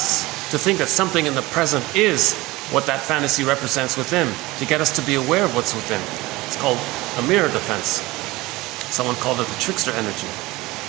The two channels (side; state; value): left; quieter; 20.3 dB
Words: to think that something in the present is what that fantasy represents within, to get us to be aware of what's within. It's called a mirror defense. Someone called it the trickster energy.